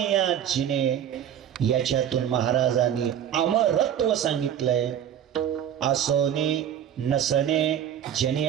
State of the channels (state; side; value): quieter; left; 9.8 dB